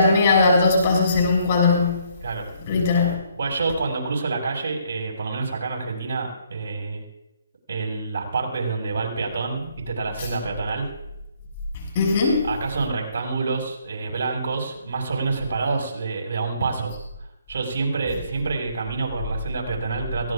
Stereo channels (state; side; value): inverted; both; correlation -0.67